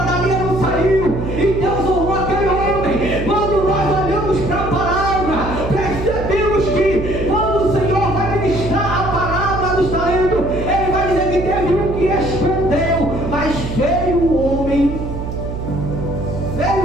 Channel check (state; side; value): noise; right; hum, 6 dB below the sound